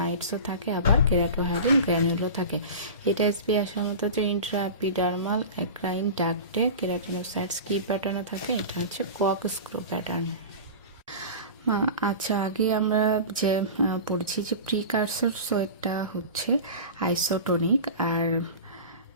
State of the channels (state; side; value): inverted; both; correlation -0.32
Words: থাকে, আবার কেরাটোহাইলিন গ্র্যানিউলও থাকে। এটা এসবি আসার মতো যে ইন্ট্রাএপিডার্মাল অ্যাক্রাইন ডাক্টে কেরাটিনোসাইটস কি প্যাটার্নে থাকে? এটা হচ্ছে কর্কস্ক্রু প্যাটার্ন। আচ্ছা, আগে আমরা যে পড়েছি যে প্রিকারসর সোয়েটটা হচ্ছে আইসোটোনিক আর